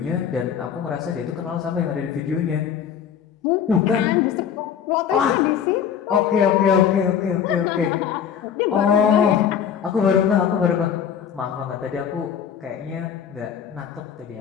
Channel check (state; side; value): quieter; right; 8.3 dB